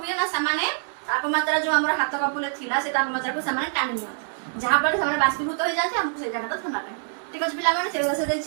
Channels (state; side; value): silent; left; digital silence